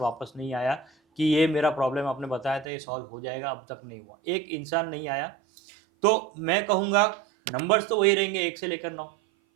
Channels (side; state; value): left; drops out; at 2.7 s